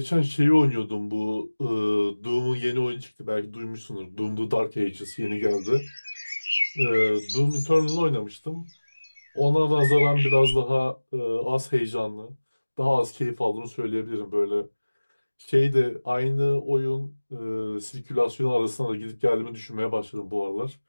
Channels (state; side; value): inverted; both; correlation -1.00